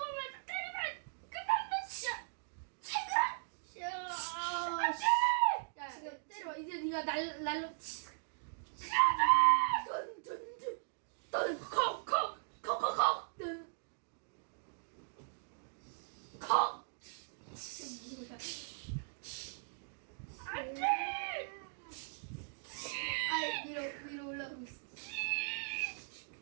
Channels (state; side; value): silent; left; digital silence